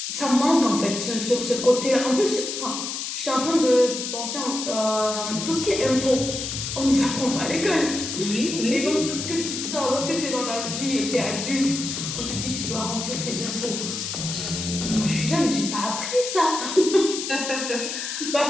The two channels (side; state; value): left; noise; hiss, 5 dB below the sound